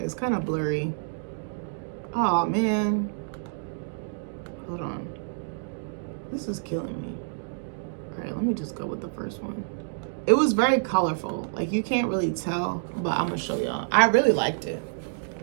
kind of blurry. Oh man. Hold on. This is killing me. All right, let me just go with the first one. It was very colorful. Like you can't really tell, but I'm gonna show y'all. I really liked it.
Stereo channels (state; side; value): silent; left; digital silence